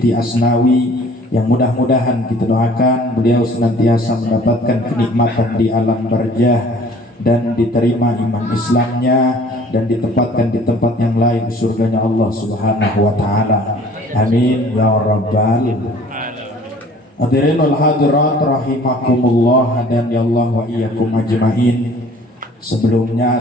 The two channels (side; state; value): both; normal; correlation 0.51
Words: Asnawi, yang mudah-mudahan kita doakan beliau senantiasa mendapatkan kenikmatan di alam barzah dan diterima iman Islamnya dan ditempatkan di tempat yang lain surganya Allah Subhanahu wa taala. Amin ya rabbal hadirin wal hadirat rahimakumullah dan ya Allah wa iyyakum ajmain. Sebelumnya